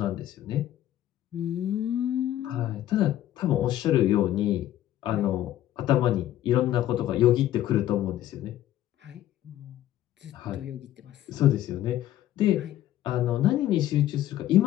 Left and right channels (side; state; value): right; quieter; 13.0 dB